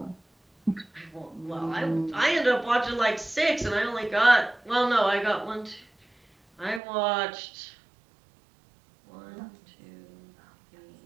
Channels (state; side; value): drops out; left; at 6.8 s